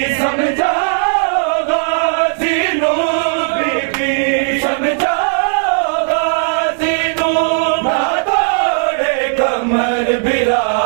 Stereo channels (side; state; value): left; silent; 68 dB below the other